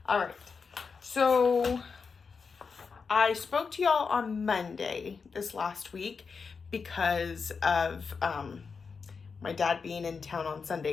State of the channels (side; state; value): right; quieter; 5.3 dB